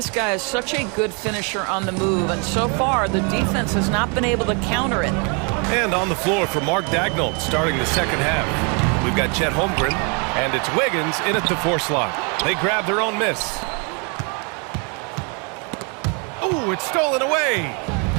guy is such a good finisher on the move, and so far, the defense has not been able to counter it. And on the floor for Mark Daigneault starting the second half. We've got Chet Holmgren, and it's Wiggins in at the 4 slot. They grab their own miss. Ooh, it's stolen away.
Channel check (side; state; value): left; quieter; 35.0 dB